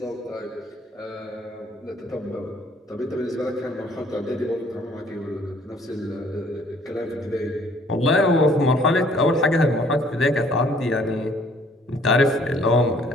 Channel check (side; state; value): both; normal; correlation 0.59